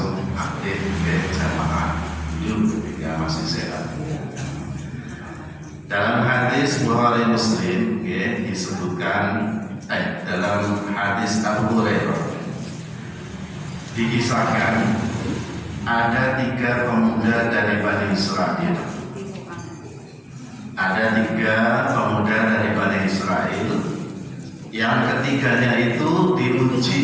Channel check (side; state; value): both; identical; correlation 1.00